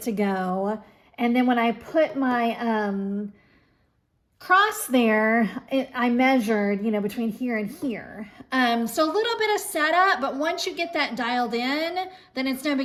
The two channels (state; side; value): identical; both; correlation 1.00